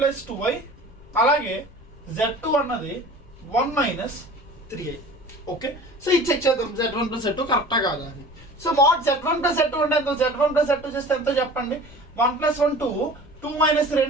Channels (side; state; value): left; noise; rumble, 22 dB below the sound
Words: 2i అలాగే z2 అన్నది 1 మైనస్ 3i. ఓకే, సో ఇది చెక్ చేద్దాం z1 ప్లస్ z2 కరెక్టా కాదా అని. So mod z1 plus z2 అంటే ఎంత, z1 ప్లస్ z2 చేస్తే ఎంతో చెప్పండి. 1 ప్లస్ 1 2 మైనస్ 3